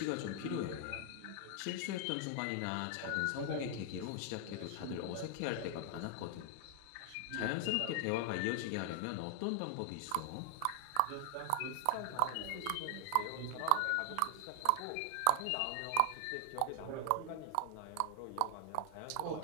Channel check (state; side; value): different; both; correlation 0.00